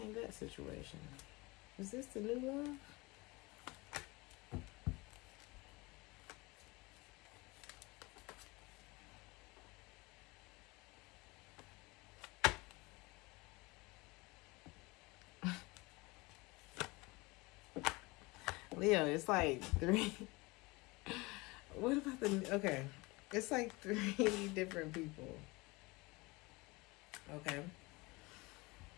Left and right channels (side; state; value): right; quieter; 24.2 dB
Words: that situation. Is this the new love? Leo, it's like 3. What about the... Okay. It's like 3 different people. Okay.